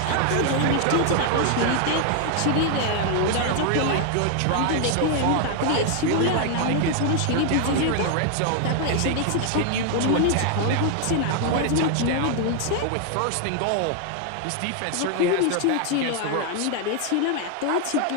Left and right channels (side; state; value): both; different; correlation 0.00